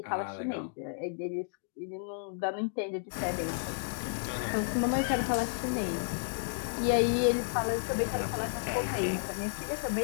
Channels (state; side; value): silent; right; digital silence